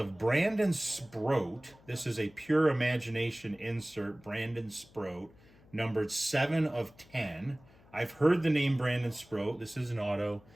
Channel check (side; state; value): left; noise; hum, 26 dB below the sound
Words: Brandon Sproat. This is a Pure Imagination insert, Brandon Sproat, numbered 7 of 10. I've heard the name Brandon Sproat. This is an auto.